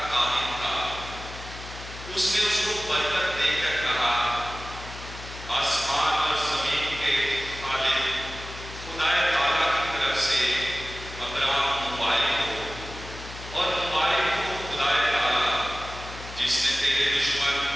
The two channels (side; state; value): left; noise; hum, 13 dB below the sound